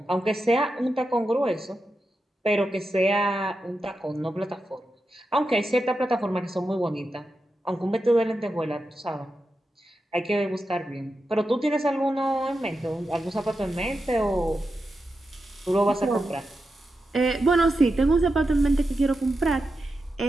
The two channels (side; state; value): both; normal; correlation 0.89